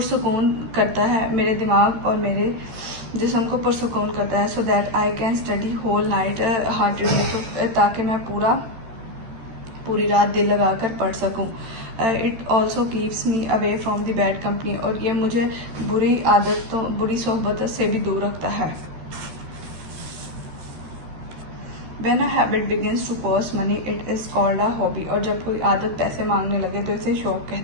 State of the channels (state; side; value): late; left; 13 ms